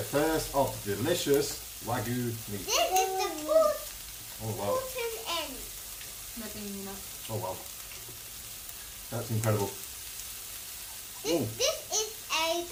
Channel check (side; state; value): both; identical; correlation 1.00